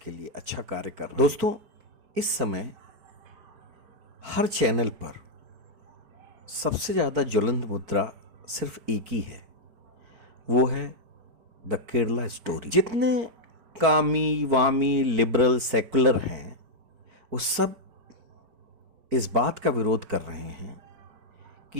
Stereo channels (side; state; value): left; late; 4.5 ms